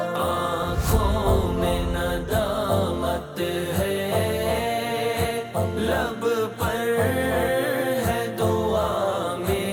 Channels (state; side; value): identical; both; correlation 1.00